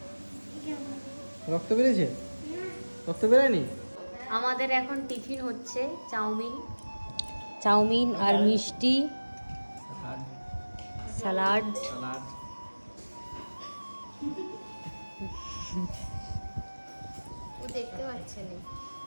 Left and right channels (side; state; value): both; inverted; correlation -1.00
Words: রক্ত বেরিয়েছে? রক্ত বেরোয়নি? আমাদের এখন টিফিন হচ্ছে চাউমিন, চাউমিন আর মিষ্টি, স্যালাড। দেখতে পাচ্ছেন